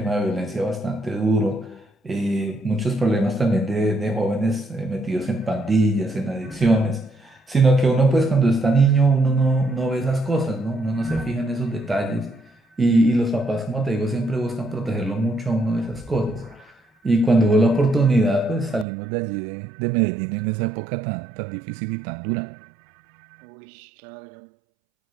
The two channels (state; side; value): drops out; left; at 18.9 s